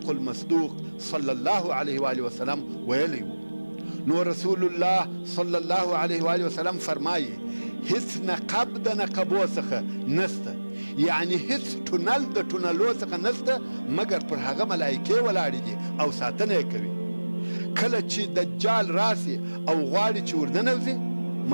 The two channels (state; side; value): inverted; both; correlation -1.00